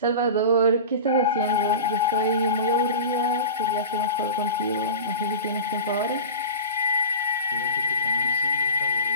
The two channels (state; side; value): inverted; both; correlation -0.30